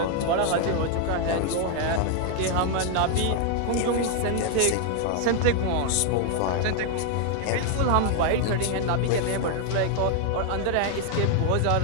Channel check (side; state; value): both; different; correlation 0.00